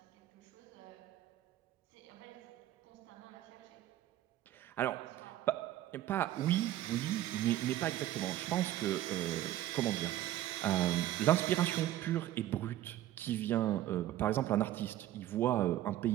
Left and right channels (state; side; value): quieter; left; 13.7 dB